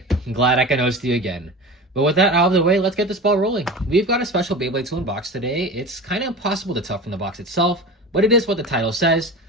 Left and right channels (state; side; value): normal; both; correlation 0.32